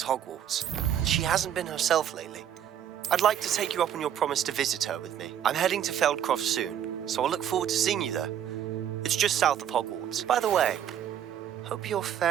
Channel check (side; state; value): left; quieter; 9.8 dB